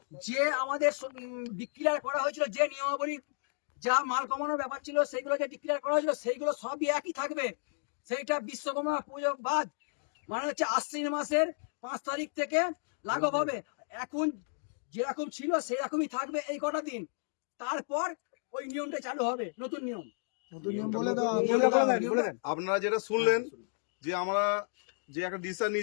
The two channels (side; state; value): right; silent; digital silence